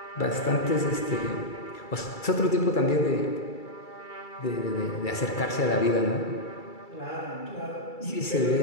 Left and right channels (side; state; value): right; late; 2.3 ms